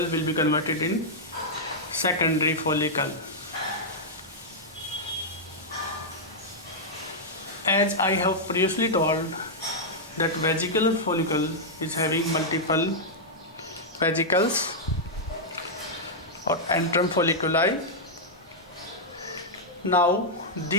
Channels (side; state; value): both; normal; correlation -0.06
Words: be converted in secondary follicle. As I have previously told that vesicular follicle is having multiple vesicles or antrum folliculi. Now